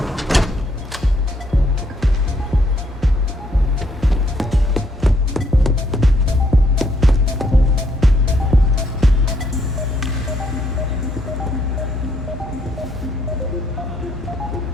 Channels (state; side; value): normal; both; correlation 0.71